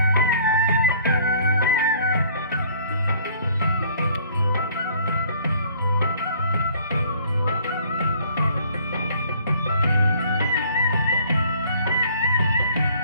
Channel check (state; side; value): inverted; both; correlation -0.56